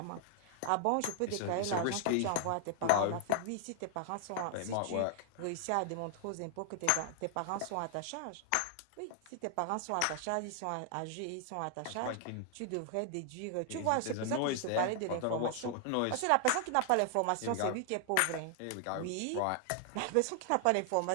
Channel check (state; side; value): different; both; correlation 0.00